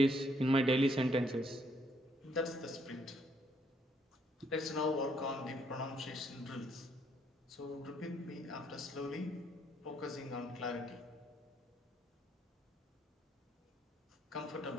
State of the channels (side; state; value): both; normal; correlation 0.70